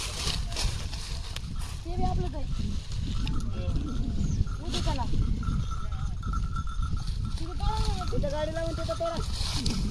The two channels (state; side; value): identical; both; correlation 1.00